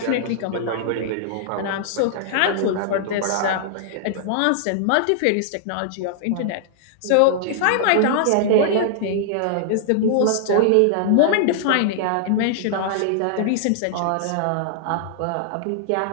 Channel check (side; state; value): both; different; correlation -0.01